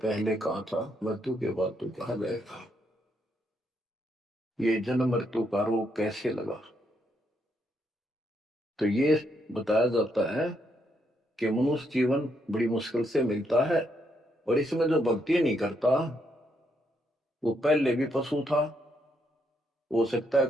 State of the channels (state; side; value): normal; both; correlation 0.76